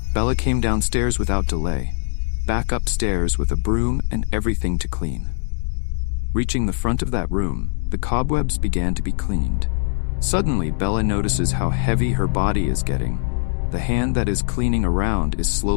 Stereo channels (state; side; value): silent; right; 65 dB below the other